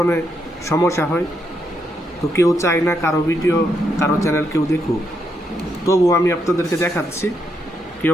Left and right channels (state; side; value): normal; both; correlation 0.79